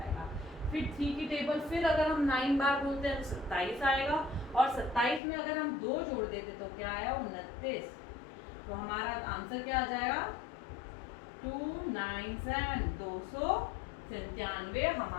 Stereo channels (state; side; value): drops out; right; at 5.2 s